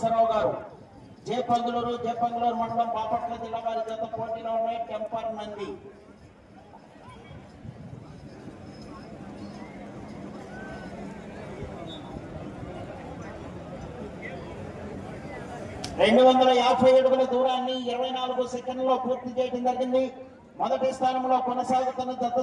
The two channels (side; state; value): both; identical; correlation 1.00